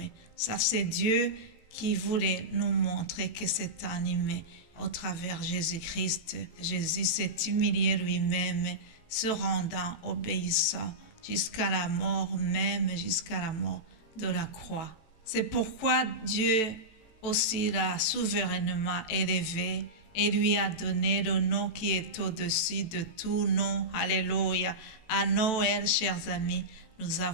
Ça, c'est Dieu qui voulait nous montrer que c'est un humain au travers Jésus-Christ. Jésus s'est humilié lui-même, se rendant obéissant jusqu'à la mort, même jusqu'à la mort de la croix. C'est pourquoi Dieu aussi l'a souverainement élevé et lui a donné le nom qui est au-dessus de tout nom. Alléluia. À Noël, chers amis, nous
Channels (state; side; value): late; right; 18 ms